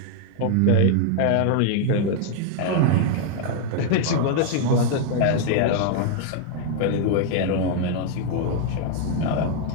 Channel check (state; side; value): different; both; correlation 0.00